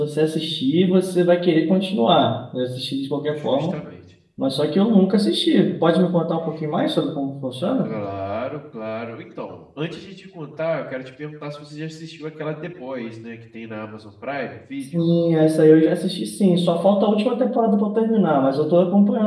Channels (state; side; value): identical; both; correlation 1.00